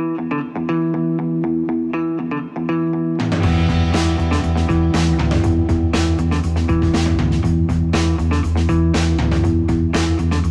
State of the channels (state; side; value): identical; both; correlation 1.00